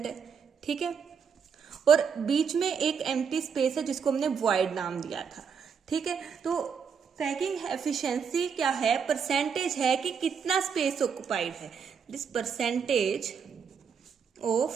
है। ठीक है, और बीच में एक एम्प्टी स्पेस है जिसको हमने वॉइड नाम दिया था। ठीक है, तो पैकिंग एफिशिएंसी क्या है, परसेंटेज है कि कितना स्पेस ऑक्युपाइड है। This percentage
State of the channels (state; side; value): quieter; left; 6.5 dB